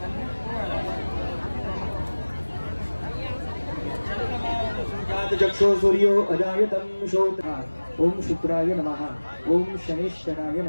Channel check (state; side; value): inverted; both; correlation -1.00